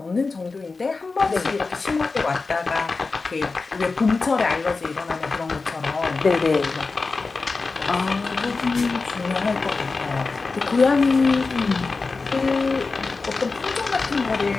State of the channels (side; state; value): right; quieter; 4.0 dB